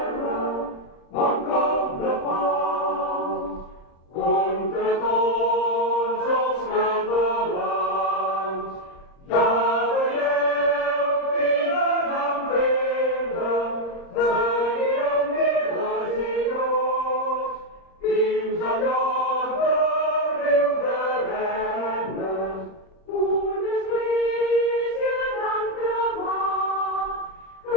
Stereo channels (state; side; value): late; right; 30 ms